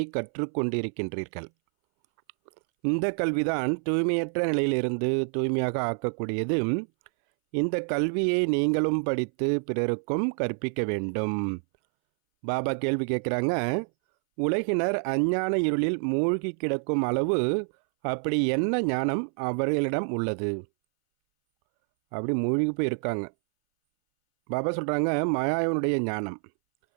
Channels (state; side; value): silent; left; 60 dB below the other